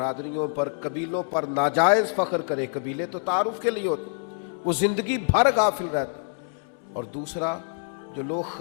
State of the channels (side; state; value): right; silent; digital silence